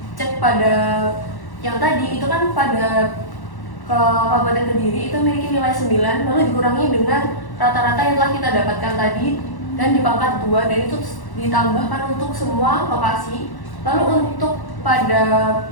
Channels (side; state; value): right; late; 1.1 ms